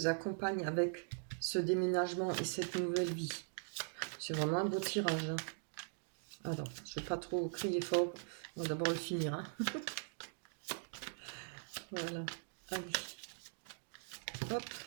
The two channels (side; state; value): left; silent; digital silence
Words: accompagne avec ce déménagement et cette nouvelle vie. C'est vraiment un beau tirage. Hein. Alors, je ne vais pas trop crier fort. On va d'abord le finir. Hein. Voilà. Allez. Hop.